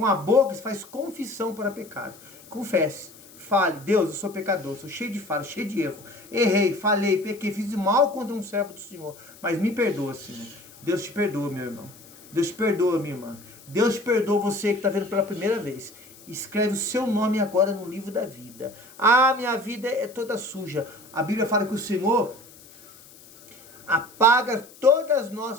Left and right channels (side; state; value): left; noise; hiss, 22 dB below the sound